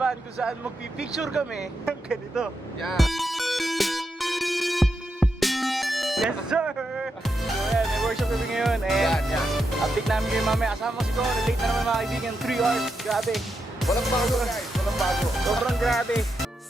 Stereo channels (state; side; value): normal; both; correlation 0.85